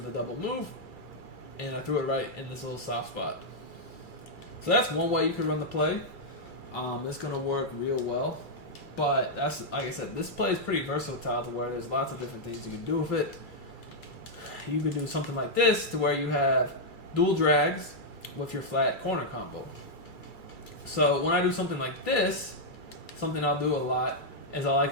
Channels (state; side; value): late; right; 2.3 ms